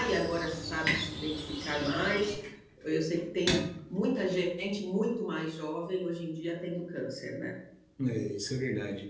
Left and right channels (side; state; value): both; identical; correlation 1.00